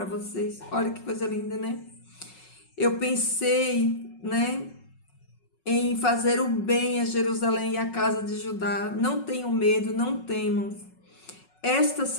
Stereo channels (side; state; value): right; late; 5.4 ms